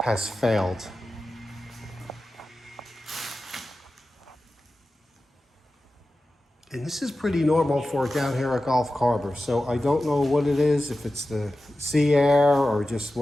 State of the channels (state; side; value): normal; both; correlation 0.94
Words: has failed. And this is pretty normal for down here at Gulf Harbors. So I don't know what it is, if it's the sea air or just